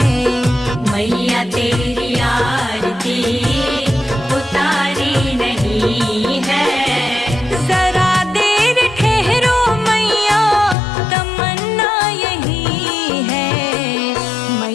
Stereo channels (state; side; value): drops out; right; at 10.8 s